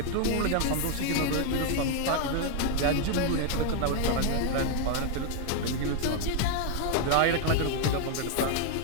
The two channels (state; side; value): different; both; correlation 0.01